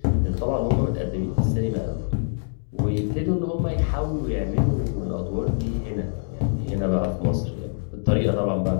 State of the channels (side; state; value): right; silent; digital silence